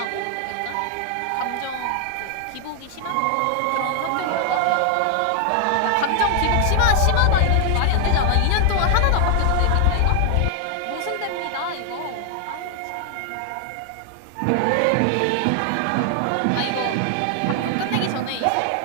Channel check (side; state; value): both; different; correlation 0.00